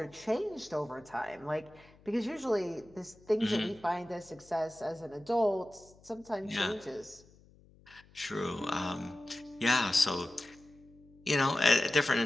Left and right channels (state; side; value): noise; left; hum, 26 dB below the sound